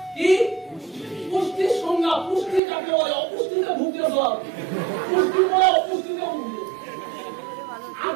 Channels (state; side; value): drops out; left; at 2.6 s